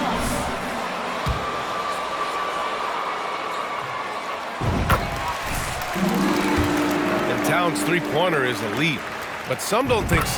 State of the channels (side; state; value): both; identical; correlation 1.00